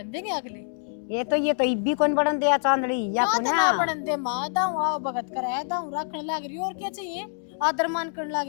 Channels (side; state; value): right; silent; digital silence